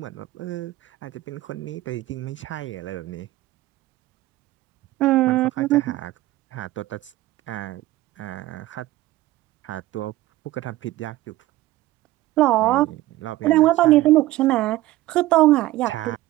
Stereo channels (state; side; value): quieter; left; 16.8 dB